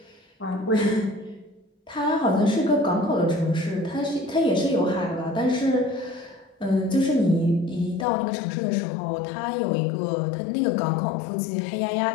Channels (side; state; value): right; drops out; at 8.1 s